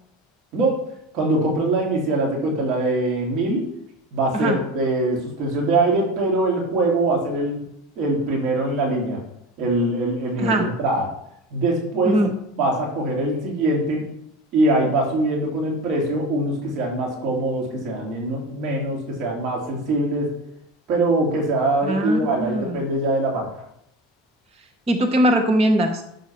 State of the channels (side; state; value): both; normal; correlation 0.32